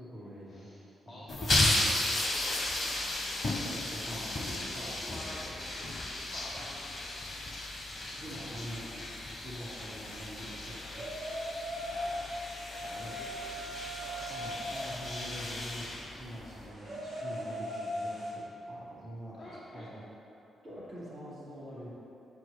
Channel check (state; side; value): normal; both; correlation 0.81